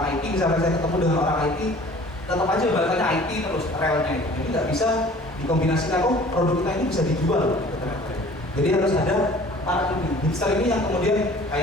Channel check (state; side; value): normal; both; correlation 0.48